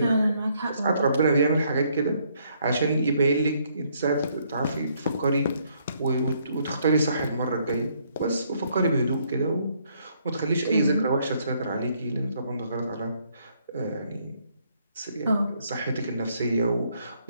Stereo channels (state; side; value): inverted; both; correlation -0.69